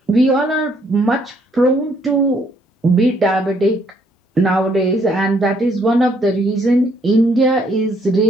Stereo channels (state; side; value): normal; both; correlation 0.68